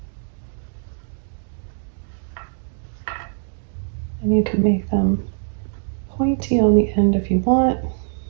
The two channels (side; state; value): left; silent; digital silence